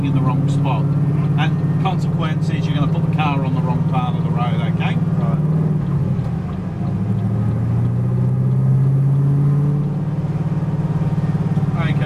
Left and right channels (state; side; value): identical; both; correlation 1.00